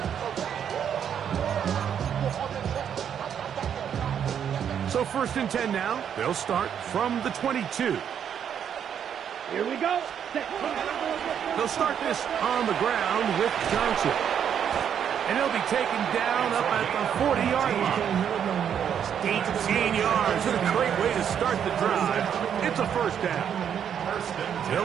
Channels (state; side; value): quieter; left; 8.5 dB